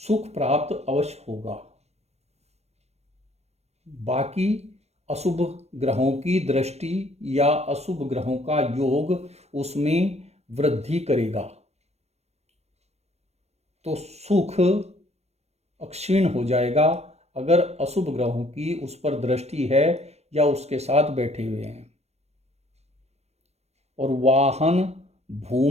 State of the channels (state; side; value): late; left; 0.31 ms